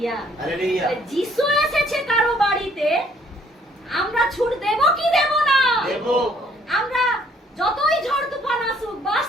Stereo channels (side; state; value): both; normal; correlation 0.63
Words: যিশু এসেছে কারো বাড়িতে, আমরা ছুট দেব কি দেব না? আমরা যতই ঝড় তুফান আসুক, বাস